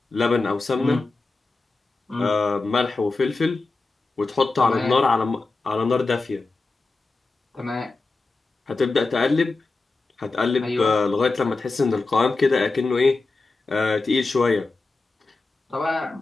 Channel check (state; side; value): quieter; right; 3.6 dB